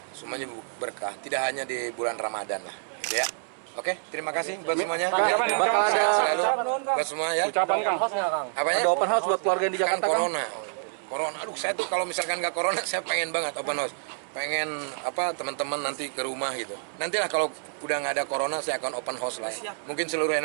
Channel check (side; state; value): left; silent; 58 dB below the other